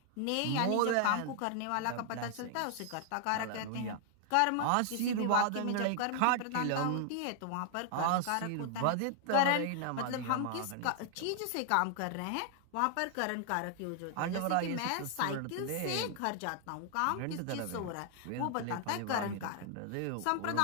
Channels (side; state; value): both; different; correlation 0.00